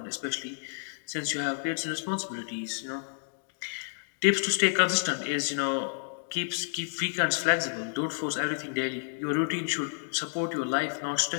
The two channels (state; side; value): silent; right; digital silence